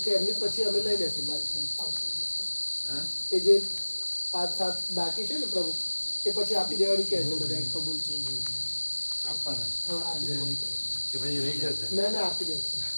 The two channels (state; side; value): inverted; both; correlation -1.00